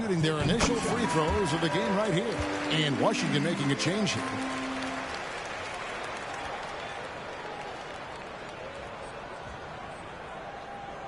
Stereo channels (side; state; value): both; identical; correlation 1.00